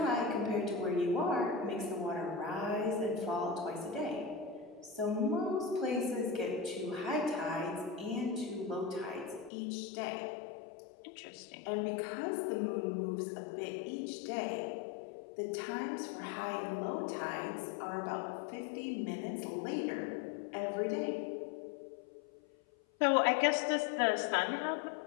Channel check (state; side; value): drops out; right; at 9.5 s